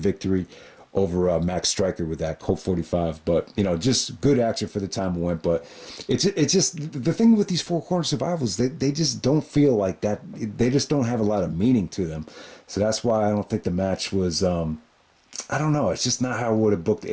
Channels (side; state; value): both; identical; correlation 1.00